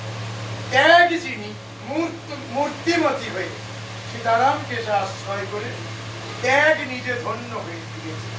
ত্যাগ যিনি মূর্তিমতী হয়ে সীতারামকে সে আশ্রয় করে ত্যাগ নিজে ধন্য হয়ে দিয়েছে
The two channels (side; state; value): both; identical; correlation 1.00